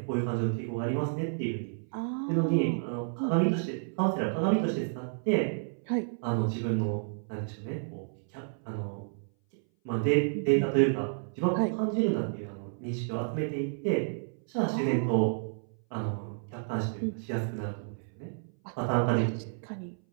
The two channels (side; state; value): left; silent; 57 dB below the other